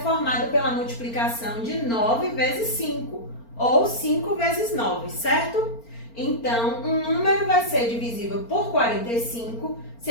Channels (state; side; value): late; right; 4.4 ms